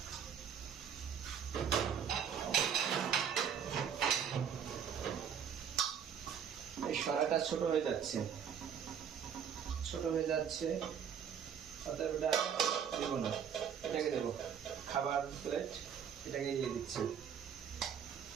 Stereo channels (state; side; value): quieter; left; 7.9 dB